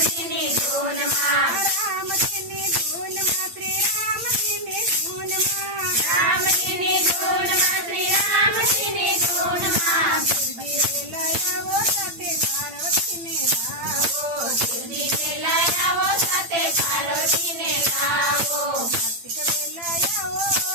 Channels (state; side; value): late; left; 8.8 ms